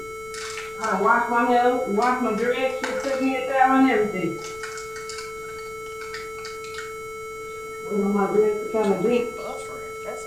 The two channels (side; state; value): left; noise; rumble, 22 dB below the sound